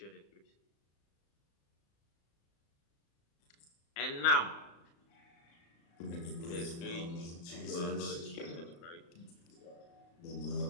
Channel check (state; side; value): late; right; 35 ms